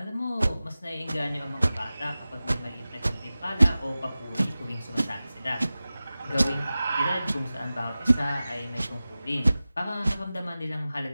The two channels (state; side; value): inverted; both; correlation -0.96